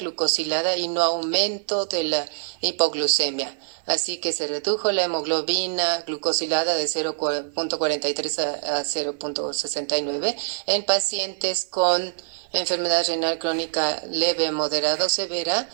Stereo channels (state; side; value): silent; left; 62 dB below the other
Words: y no aumento de la hipoglucemia. Así que se redujo la hemoglobina glucosilada de 0.43 a 0.69 en pacientes con enfermedad renal crónica leve, moderada o severa,